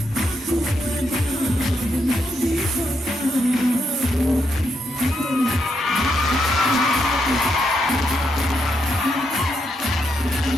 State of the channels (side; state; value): both; normal; correlation 0.80